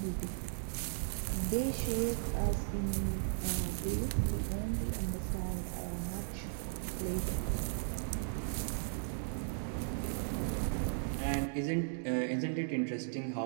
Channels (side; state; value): left; silent; digital silence